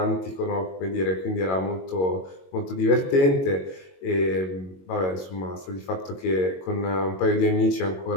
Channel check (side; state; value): right; late; 22 ms